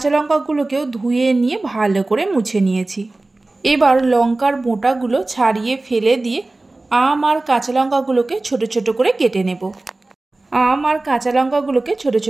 লঙ্কাগুলোকেও ধুয়ে নিয়ে ভালো করে মুছে নিয়েছি। এবার লঙ্কার বোঁটাগুলো ছাড়িয়ে ফেলে দিয়ে আম আর কাঁচা লঙ্কাগুলোকে ছোট ছোট করে কেটে নেব। আম আর কাঁচা লঙ্কাগুলোকে ছোট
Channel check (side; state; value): left; quieter; 3.0 dB